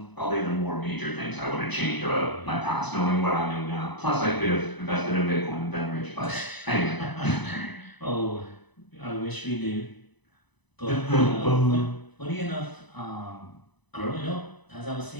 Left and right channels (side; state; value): right; late; 1.0 ms